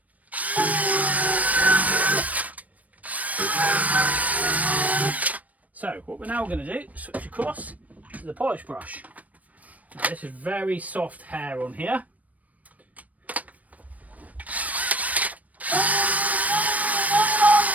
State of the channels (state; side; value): late; left; 0.071 ms